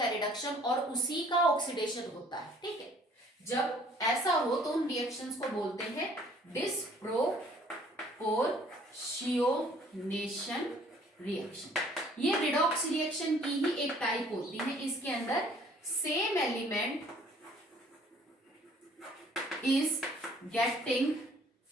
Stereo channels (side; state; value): both; normal; correlation 0.57